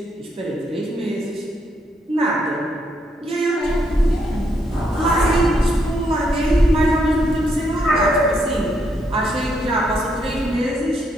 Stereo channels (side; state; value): both; normal; correlation 0.76